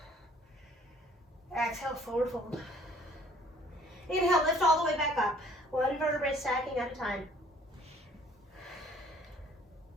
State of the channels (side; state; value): both; normal; correlation 0.57